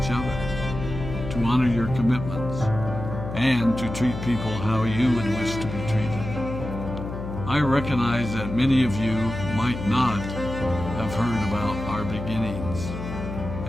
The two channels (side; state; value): left; noise; hum, 7 dB below the sound